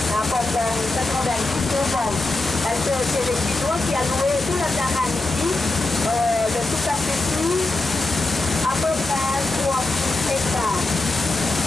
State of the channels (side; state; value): right; quieter; 3.1 dB